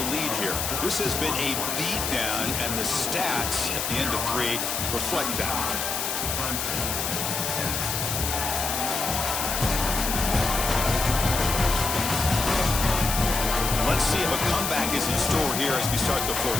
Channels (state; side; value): noise; left; hiss, 2 dB below the sound